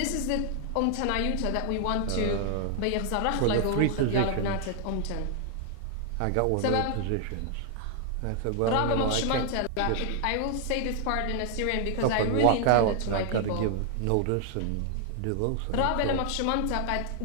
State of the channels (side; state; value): both; different; correlation 0.00